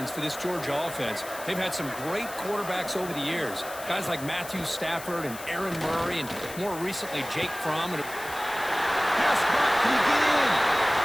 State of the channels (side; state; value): left; noise; hiss, 13 dB below the sound